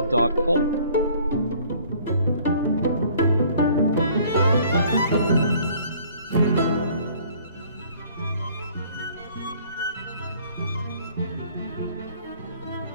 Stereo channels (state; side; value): inverted; both; correlation -0.56